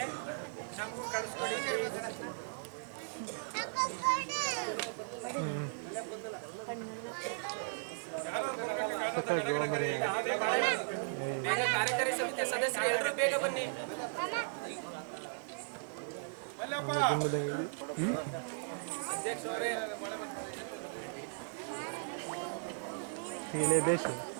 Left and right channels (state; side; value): silent; left; digital silence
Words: ನಮಗೂ ಕಳಿಸ್ಕೊಡಿ. ಬೇಗ ಕಾರ್ಯಕಾರಿ ಸಮಿತಿಯ ಸದಸ್ಯರು ಎಲ್ಲರೂ ಬೇಗ ಬನ್ನಿ. ಅಧ್ಯಕ್ಷರೇ,